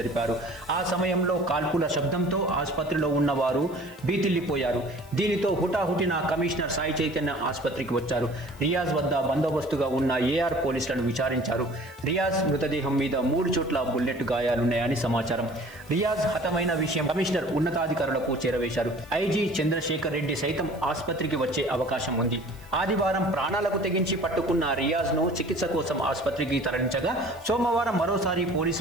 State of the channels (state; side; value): noise; right; hiss, 26 dB below the sound